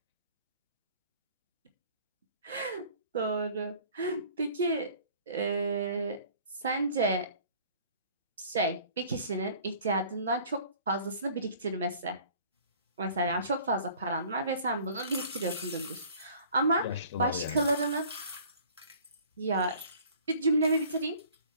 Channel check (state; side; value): inverted; both; correlation -0.51